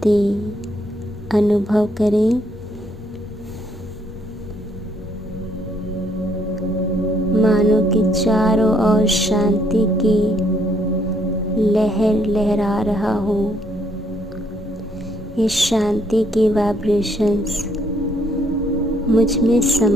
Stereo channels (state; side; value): normal; both; correlation 0.69